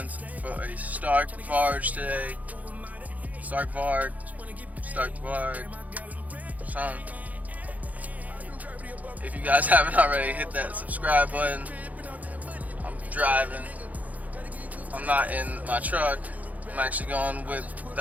for a Stark Varg today. Stark Varg. Son. If you guys haven't already, hit that subscribe button. I'm driving. I'm not in my truck. I'm actually going with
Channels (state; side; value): late; left; 0.076 ms